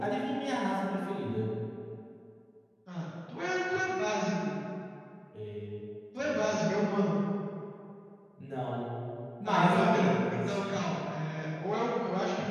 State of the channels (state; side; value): identical; both; correlation 1.00